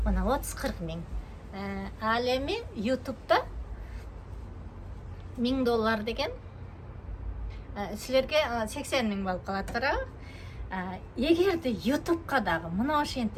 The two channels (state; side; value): identical; both; correlation 1.00